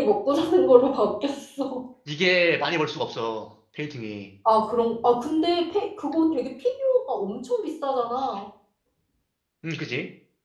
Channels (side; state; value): both; identical; correlation 1.00